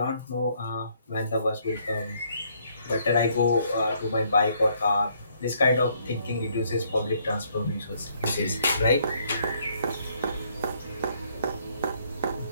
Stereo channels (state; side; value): inverted; both; correlation -0.68